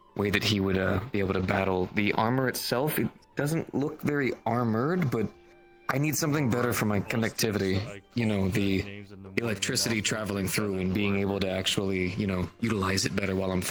way that he would be able to battle. The armor itself, it doesn't look very armored, but I need something better for my connectivity. You know, the electricity traveling through and being able to actually, utilize it better while I'm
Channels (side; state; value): both; identical; correlation 1.00